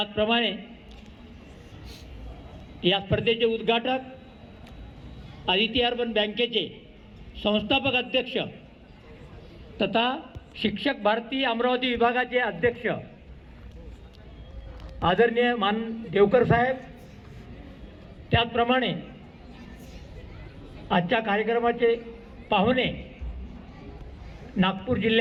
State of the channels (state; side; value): identical; both; correlation 1.00